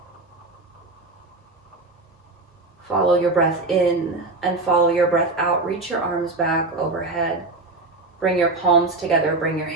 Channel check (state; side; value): quieter; left; 3.2 dB